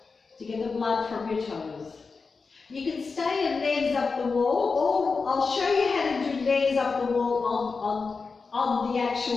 to get the blood from your toes. You can stay in legs up the wall, or I'll show you how to do legs up the wall on the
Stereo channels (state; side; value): quieter; right; 4.6 dB